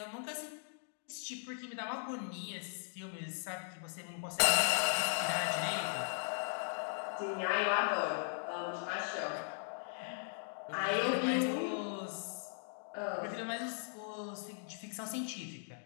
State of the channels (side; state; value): right; silent; digital silence